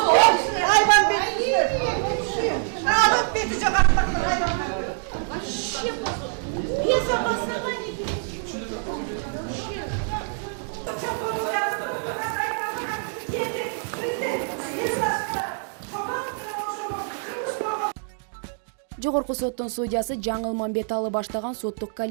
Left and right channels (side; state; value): left; silent; 62 dB below the other